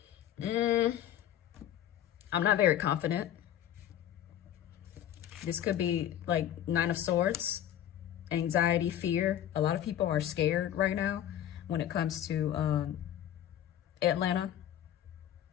I'm not very confident. This could be like 9 of Swords, anxiety, fear. A lot of people are scared right now when it comes to Atlanta.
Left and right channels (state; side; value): quieter; right; 11.1 dB